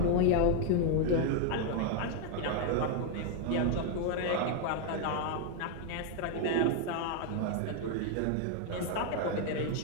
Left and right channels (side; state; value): both; different; correlation 0.00